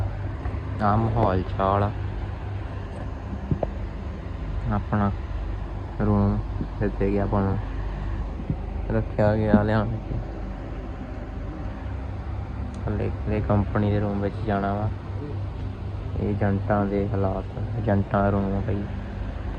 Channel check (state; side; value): identical; both; correlation 1.00